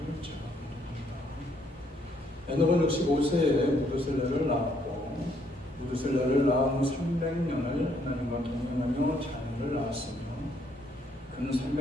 제가 보겠습니다. 에녹은 65세에 무드셀라를 낳았고 무드셀라를 낳은 후 300년을 하나님과 동행하며 자녀를 낳았으며 그는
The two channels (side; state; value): both; normal; correlation 0.69